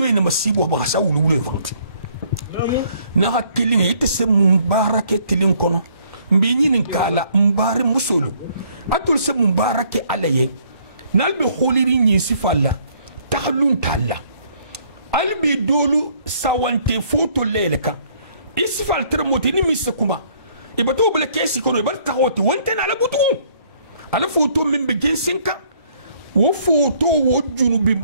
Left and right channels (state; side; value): inverted; both; correlation -0.63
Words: masibo ba sa ulu ulu fanti na hakili ngi te se mubarake tilin kono mbi nyinin kala mbare musolu atul se mubarake alaye nalbe kholiri nyi sifalla tahlun talla albi dolu sawante foto leleka isfal termoti ni misakuma ibato bele kesi kono ibar taxoti wonte na la butu ala foto min be gensenka wo foto wo junubi